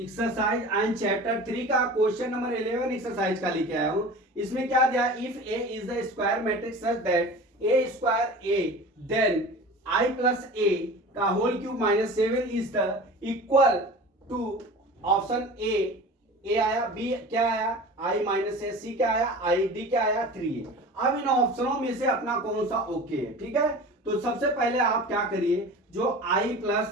and chapter 3 का क्वेश्चन नंबर 11 एक्सरसाइज का लेके आया हूं। इसमें क्या दिया, if A is the square matrix such that A square A then I plus A का whole cube minus 7 is the equal to option A आया, बी क्या आया आई माइनस ए, सी क्या आया आई, डी क्या आया 3। अब इन ऑप्शनों में से अपना कौन सा ओके है, ठीक है। तो सबसे पहले आप क्या करिए, जो आई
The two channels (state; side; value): normal; both; correlation 0.37